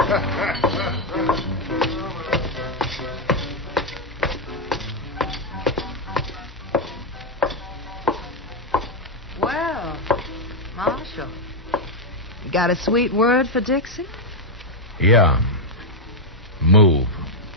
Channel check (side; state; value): both; normal; correlation 0.01